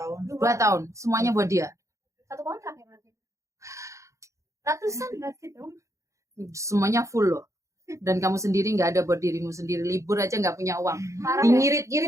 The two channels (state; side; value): late; left; 0.15 ms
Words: 2 tahun. Semuanya buat dia. Satu kontrak ya berarti. Ratusan berarti dong. Semuanya full loh. Dan kamu sendiri nggak ada buat dirimu sendiri. Libur aja nggak punya uang. Parah ya.